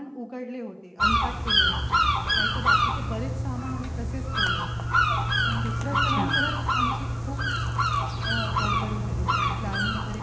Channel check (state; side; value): identical; both; correlation 1.00